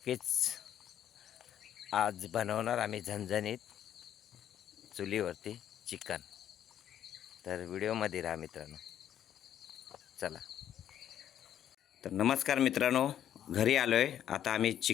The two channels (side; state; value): right; quieter; 10.4 dB